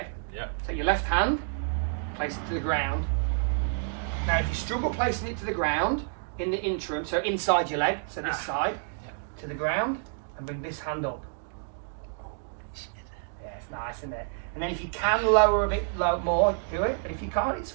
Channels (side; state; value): left; silent; digital silence